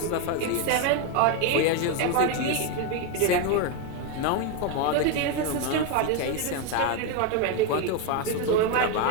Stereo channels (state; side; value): different; both; correlation 0.02